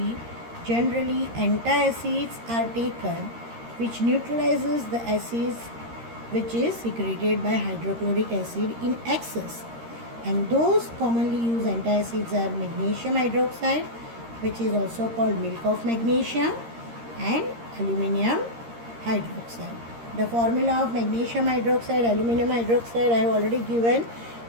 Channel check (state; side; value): late; left; 13 ms